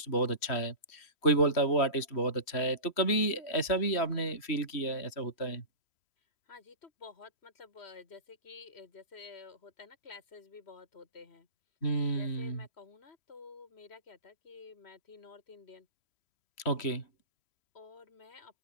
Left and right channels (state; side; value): late; right; 3.1 ms